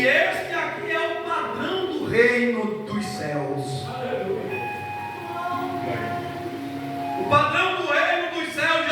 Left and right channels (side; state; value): both; identical; correlation 1.00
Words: este aqui é o padrão do reino dos céus. O padrão do reino dos céus,